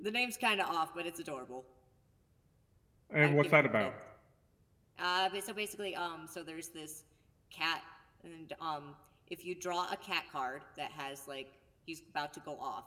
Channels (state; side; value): identical; both; correlation 1.00